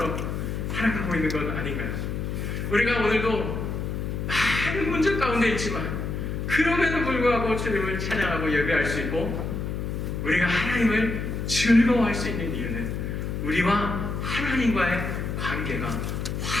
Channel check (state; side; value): noise; left; hum, 3 dB below the sound